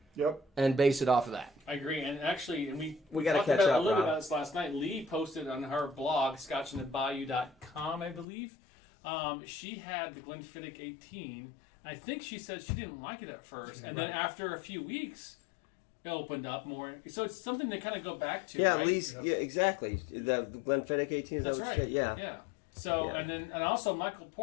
Yep. and base it off of that. I agree, and actually, We gotta talked catch about up, a little bit Rob. about this last night. Lee posted on her blog, scotchandthebayou.com, I believe. She had the Glenfiddich 18. I think she said she didn't like it at first, and then after a few weeks, it opened up more. So it's something to kind of go back to. Yeah, right? Lee's, yeah, exactly. The Glenfiddich 18 is That's that what right. you said? Yeah. Yeah. So Yeah. and also Michael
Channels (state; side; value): drops out; right; at 8.2 s